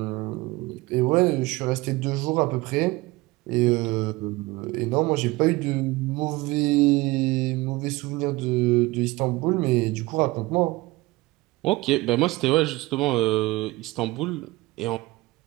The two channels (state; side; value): quieter; left; 21.1 dB